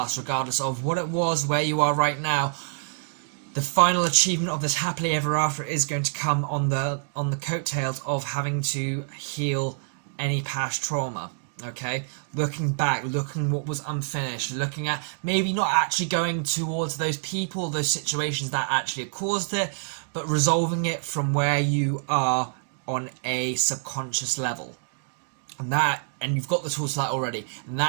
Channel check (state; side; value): silent; left; digital silence